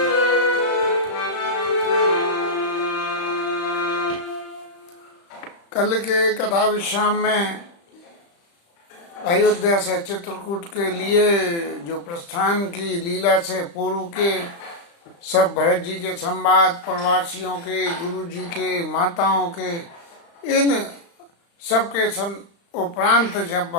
कल के कथा विश्राम में अयोध्या से चित्रकूट के लिए जो प्रस्थान की लीला से पूर्व के सब भरत जी के संवाद, प्रवासियों के, गुरु जी के, माताओं के, इन सबके उपरांत जब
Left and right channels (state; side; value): late; right; 35 ms